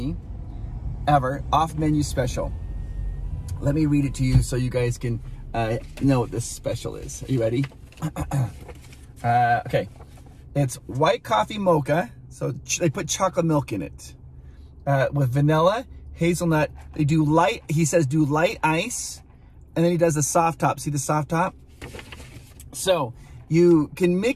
ever, off menu special. Let me read it to you so you guys can know what this special is. Are you ready? Okay. It's white coffee mocha. So they put chocolate milk in it with vanilla, hazelnut. They do light, he says do light ice. And then he does the soft top. See the soft top? So you can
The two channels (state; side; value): identical; both; correlation 1.00